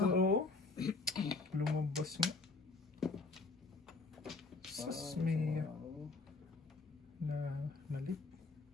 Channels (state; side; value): quieter; right; 3.8 dB